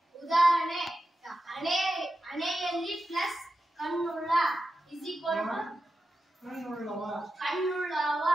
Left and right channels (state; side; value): normal; both; correlation 0.91